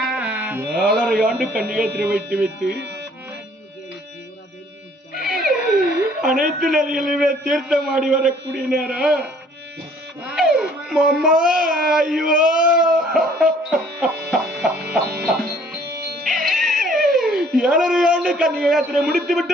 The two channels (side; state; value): both; normal; correlation 0.58